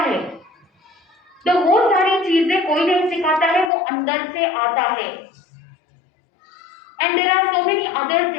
तो वो सारी चीजें कोई नहीं सिखाता है, वो अंदर से आता है। And there are so many other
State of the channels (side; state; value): right; drops out; at 3.7 s